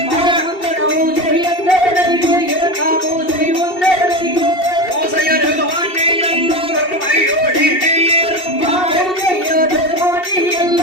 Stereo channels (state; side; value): late; right; 2.7 ms